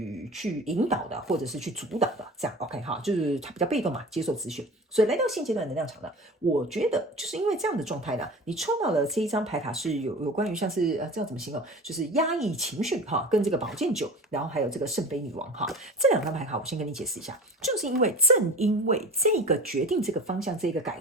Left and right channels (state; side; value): normal; both; correlation 0.36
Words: 引导的，或者是去主导的，这样 OK 哈，就是他比较被动嘛，接受资讯。所以来到现阶段能量场呢，我觉得就是因为这样的状态呢，你抽到了这一张牌卡是有关于像是这样怎么形容，就是压抑情绪哈，跟这个宝剑九，然后还有这个圣杯女王哈，这两张牌卡我先跟你解释一下，就是因为正因为这个决定、这个方向、这个改